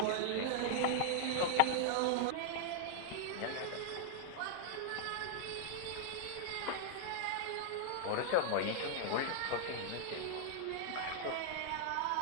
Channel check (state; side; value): different; both; correlation -0.01